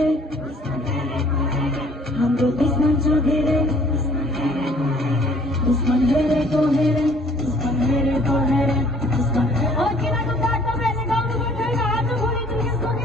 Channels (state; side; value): normal; both; correlation 0.57